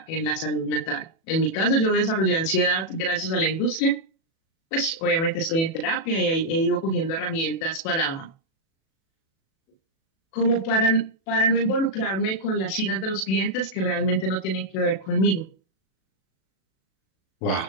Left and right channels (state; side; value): late; right; 37 ms